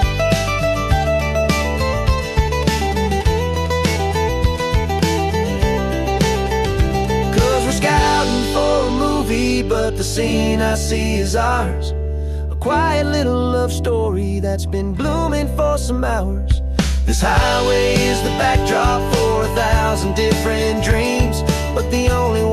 But the scene I see is ours. A quiet little love story that's been blooming for some hours. This highway is the backdrop for 1,000 different dreams, but the only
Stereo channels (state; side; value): identical; both; correlation 1.00